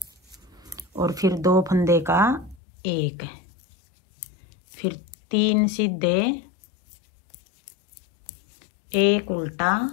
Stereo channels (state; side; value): drops out; right; at 2.6 s